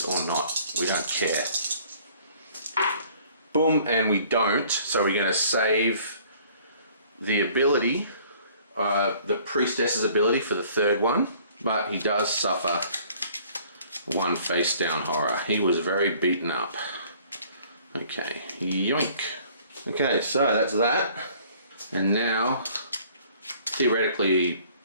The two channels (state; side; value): inverted; both; correlation -0.55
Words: or not, we don't care. Boom, and we don't, so we're going to save the ability, the priestess's ability for the 3rd one. But he does suffer 1 face down horror. He was very beaten up. Okay, yoink. Okay, so that's that. And now, theoretically